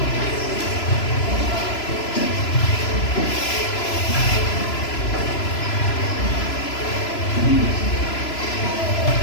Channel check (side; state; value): right; late; 3.0 ms